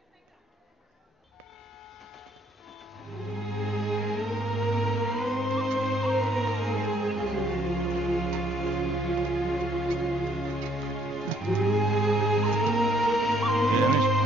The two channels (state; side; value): normal; both; correlation 0.67